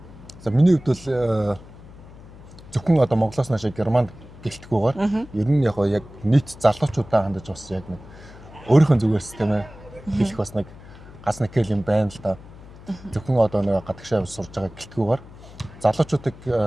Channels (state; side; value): noise; left; hum, 19 dB below the sound